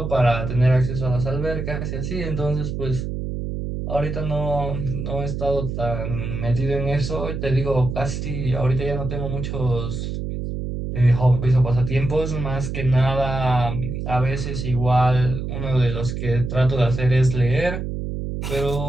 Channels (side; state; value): right; noise; hum, 4 dB below the sound